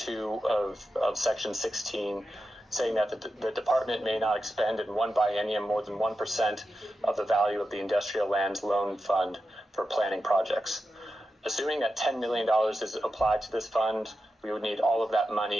of section 16, saying that the department may not expend in one biennium more than 1% of the value of the industrial lands loan fund for planning projects. Assuming that $10 million is applied to this fund, we would need all of that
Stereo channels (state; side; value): normal; both; correlation 0.90